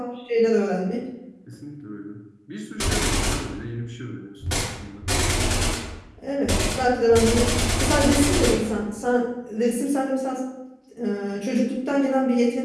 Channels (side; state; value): both; identical; correlation 1.00